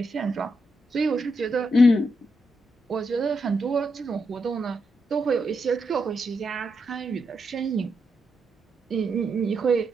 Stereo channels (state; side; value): normal; both; correlation 0.83